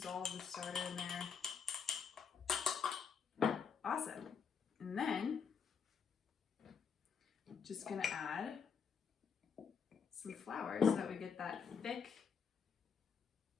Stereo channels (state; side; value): quieter; right; 6.5 dB